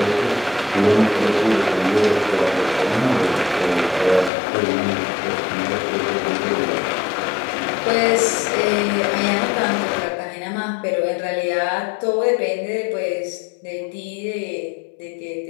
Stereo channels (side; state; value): right; drops out; at 4.3 s